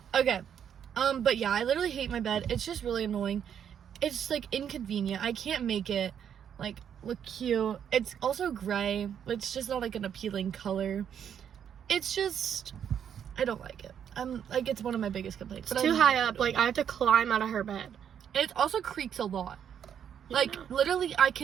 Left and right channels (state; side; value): quieter; left; 8.6 dB